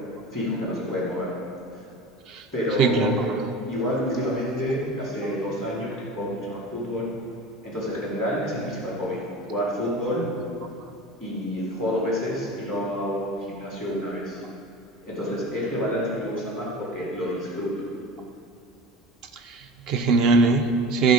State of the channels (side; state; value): both; normal; correlation 0.35